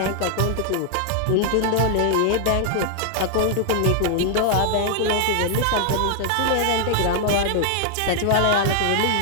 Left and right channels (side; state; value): both; different; correlation 0.00